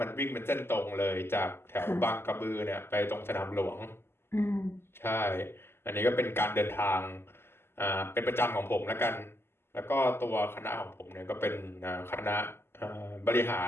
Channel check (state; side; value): late; right; 0.12 ms